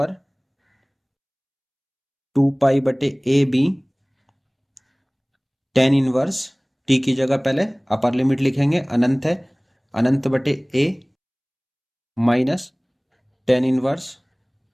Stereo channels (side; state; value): both; identical; correlation 1.00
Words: 2 पाई बटे a b tan inverse, t की जगह पहले अपर लिमिट लिखेंगे, अनंत है, अनंत बटे ए माइनस टेन इनवर्स